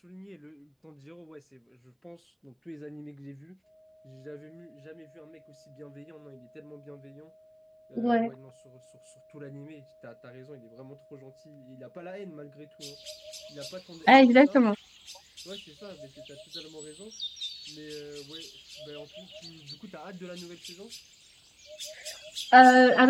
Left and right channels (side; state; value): both; identical; correlation 1.00